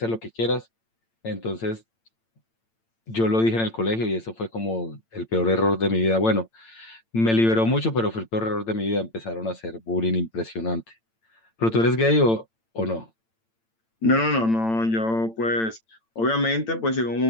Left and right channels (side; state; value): right; late; 8.9 ms